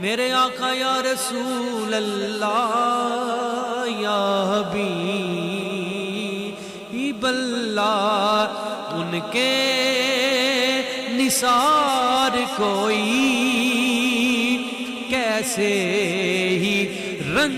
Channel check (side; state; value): both; identical; correlation 1.00